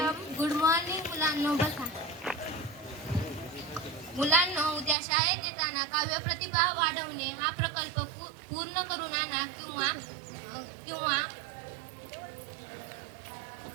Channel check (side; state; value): left; drops out; at 5.0 s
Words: Good morning मुलांनो. बसा. मुलांनो, उद्या शाळेत येताना काव्य प्रतिभा वाढवणे हा प्रकल्प पूर्ण करून आणा किंवा